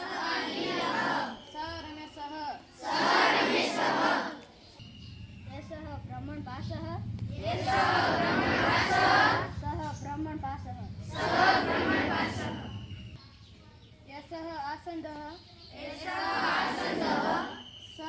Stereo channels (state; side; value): identical; both; correlation 1.00